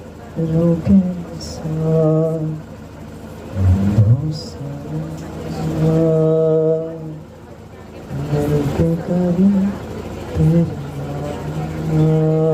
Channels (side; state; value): both; identical; correlation 1.00